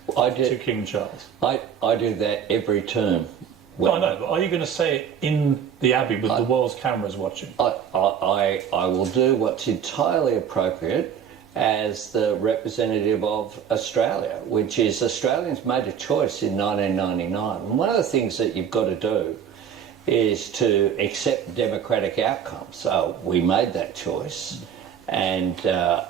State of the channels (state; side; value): quieter; left; 8.2 dB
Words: to King Charles? I do that every term. No, I know, but are you going to say it in the Abbey with the world's cameras watching? I will do what's entirely appropriate as the representative of Australia, which is Australians made a choice in 1999. And one of the things that you've got to do is to accept democratic outcomes. So we made that choice, and